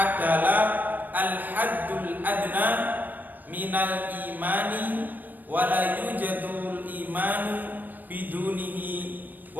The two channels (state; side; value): late; left; 0.085 ms